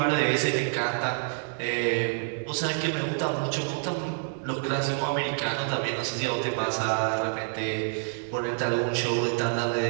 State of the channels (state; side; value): silent; left; 60 dB below the other